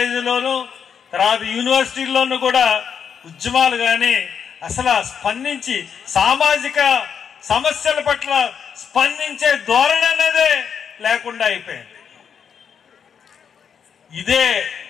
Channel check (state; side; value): quieter; right; 7.3 dB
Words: తర్వాత యూనివర్సిటీల్లోనూ కూడా ఉద్యమాలు కానీ అసలు స్పందించి సామాజిక సమస్యల పట్ల స్పందించే ధోరణి అనేదే లేకుండా అయిపోయింది. ఇదే